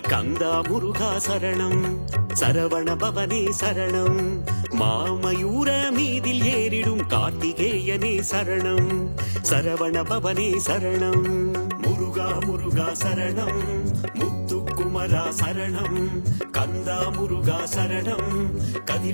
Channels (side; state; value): both; inverted; correlation -1.00